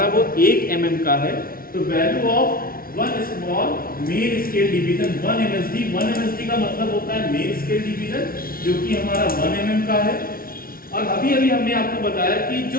वो 1 mm का है। तो value of one small main scale division 1 MSD का मतलब होता है मेन स्केल डिवीजन, जो कि हमारा 1 mm का है। और अभी हमने आपको बताया कि जो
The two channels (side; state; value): right; late; 0.43 ms